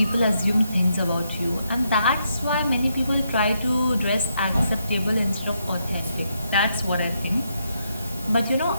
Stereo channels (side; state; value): both; inverted; correlation -0.79